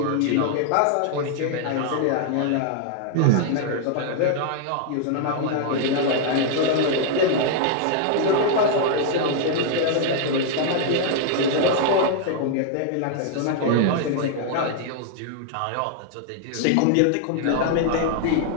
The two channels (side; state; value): both; different; correlation 0.00